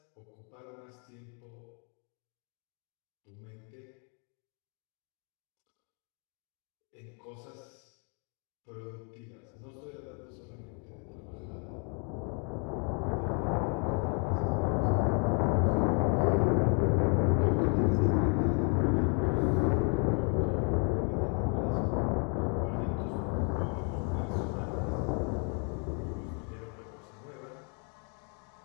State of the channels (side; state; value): right; quieter; 39.4 dB